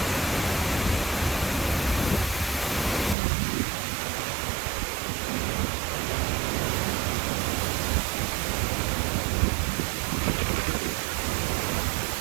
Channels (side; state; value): left; drops out; at 3.2 s